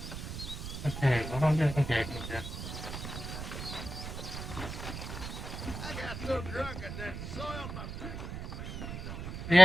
Okay, what am I doing? Okay, okay. I got so drunk I done soiled my pants.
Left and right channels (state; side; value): noise; right; rumble, 8 dB below the sound